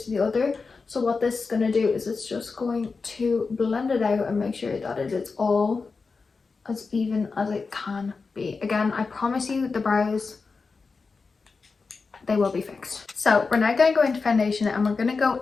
the other. So what this is going to do is it's just going to blend it out and make sure that it is all as even as it can be. Again, I promise you the brows, they will be fixed. So we're now going to go into foundation, and we're going to go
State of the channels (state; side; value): quieter; right; 4.5 dB